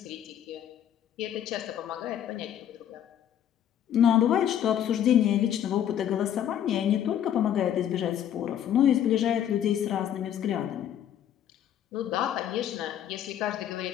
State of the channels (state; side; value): quieter; right; 10.1 dB